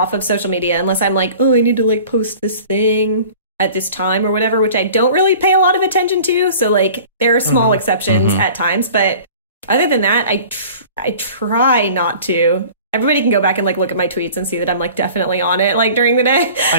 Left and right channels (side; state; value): both; inverted; correlation -0.44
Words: of social media unless I'm like, oh, I need to like post this thing at this time or whatever, which I don't really pay a lot of attention to. So like there are small exceptions at times. But other than that, I try not to. Everybody can go back and like look at my tweets and see that I'm like definitely on it like during the day. I